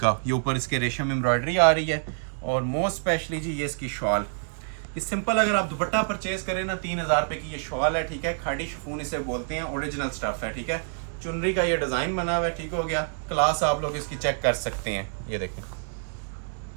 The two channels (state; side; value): silent; left; digital silence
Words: ये ऊपर इसके रेशम एम्ब्रॉयडरी आ रही है। और मोस्ट स्पेशली जी ये इसकी शॉल, ये सिंपल अगर आप दुपट्टा परचेज करें ना, 3,000 रुपए की ये शॉल है, ठीक है। खाड़ी शिफॉन इसे बोलते हैं, ओरिजिनल स्टफ है, ठीक है। चुनरी का ये डिजाइन बना हुआ है, ठीक हो गया। क्लास आप लोग इसकी चेक कर सकते हैं। ये देखें,